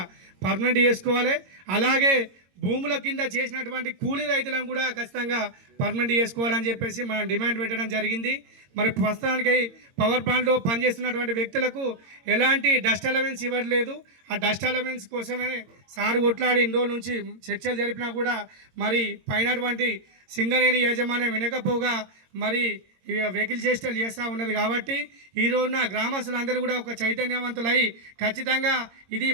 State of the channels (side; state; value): left; late; 22 ms